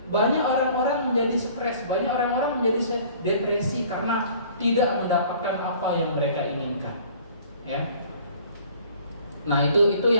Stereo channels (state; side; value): inverted; both; correlation -0.52